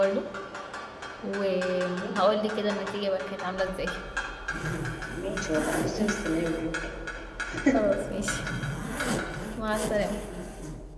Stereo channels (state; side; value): identical; both; correlation 1.00